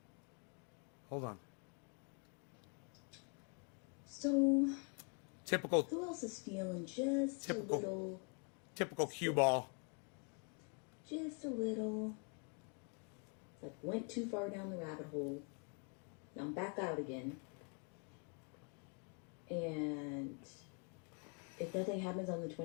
Hold on. So, Typical who else is feeling just a little... Typical cue ball. Just a little... Like, went too far down the rabbit hole. Now I'm back out again. And if nothing happens on the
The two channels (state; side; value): quieter; right; 38.7 dB